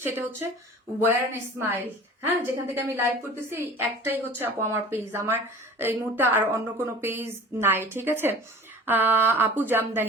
সেটা হচ্ছে ওয়্যার এন্ড স্মাইল, হ্যাঁ, যেখান থেকে আমি লাইভ করতেছি একটাই হচ্ছে আপু আমার পেজ, আমার এই মুহূর্তে আর অন্য কোনো পেজ নাই, ঠিক আছে? আপু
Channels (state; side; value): normal; both; correlation 0.42